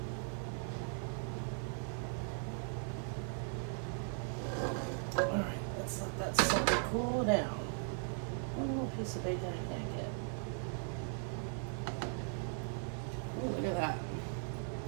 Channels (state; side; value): silent; left; 52 dB below the other